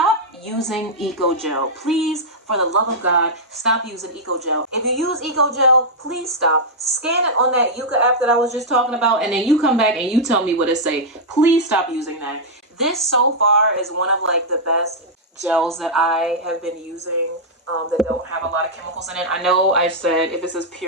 using Eco Gel. Please, for the love of God, stop using Eco Gel. If you use Eco Gel, please stop. Scan it on that Yuka app that I was just talking about, and then you come back and you tell me what it say. Please stop using that. This so far is one of like the best gels that I have been using. That don't have a lot of chemicals in it. I know I said if it says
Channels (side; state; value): both; normal; correlation -0.06